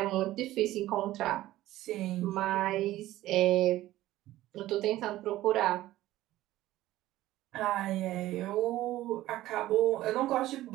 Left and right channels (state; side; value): quieter; left; 15.4 dB